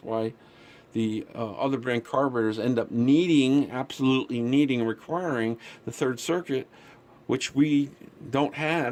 why the other brand carburetors end up absolutely needing, requiring the third circuit, which we don't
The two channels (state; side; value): identical; both; correlation 1.00